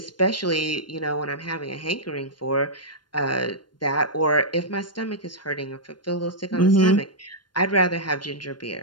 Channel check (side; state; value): right; late; 0.71 ms